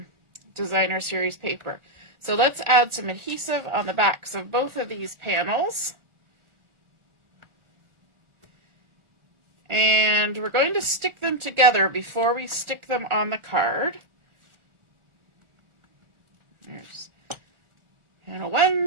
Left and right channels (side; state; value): left; late; 1.4 ms